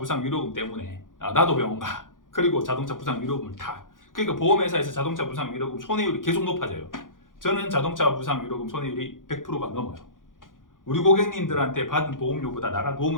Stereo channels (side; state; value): right; late; 0.89 ms